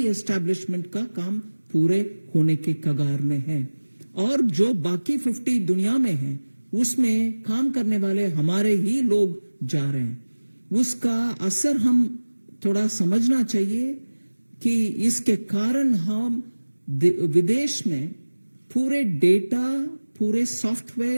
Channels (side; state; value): both; inverted; correlation -1.00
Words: एस्टैब्लिशमेंट का काम पूरे होने के कगार में है. और जो बाकी 50 दुनिया में हैं, उसमें काम करने वाले हमारे ही लोग जा रहे हैं. उसका असर हम थोड़ा समझना चाहिए कि इसके कारण हम विदेश में पूरे डेटा, पूरे